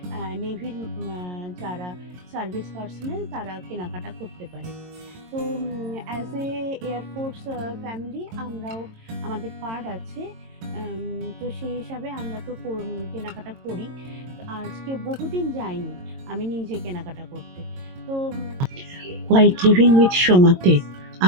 নেভির যারা সার্ভিস পার্সোনেল তারা কেনাকাটা করতে পারে। তো অ্যাজ এ এয়ারফোর্স ফ্যামিলি আমরাও আমাদের কার্ড আছে। তো সেই হিসাবে আমরা তো কেনাকাটা করি। আজকে বহুদিন যাইনি আমি নিজে কেনাকাটা করতে। তো হোয়াইট লিভিং উইথ সোমাতে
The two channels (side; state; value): left; late; 22 ms